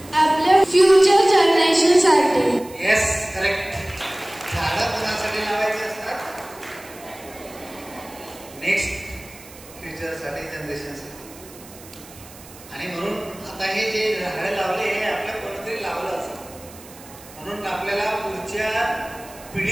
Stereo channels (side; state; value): right; noise; hiss, 20 dB below the sound